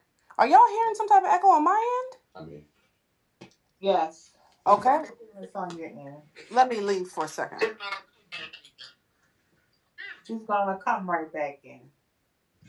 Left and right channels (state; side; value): identical; both; correlation 1.00